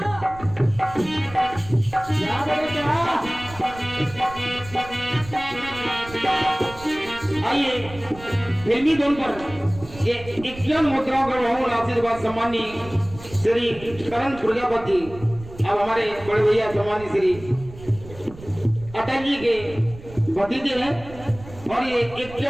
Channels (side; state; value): right; noise; rumble, 17 dB below the sound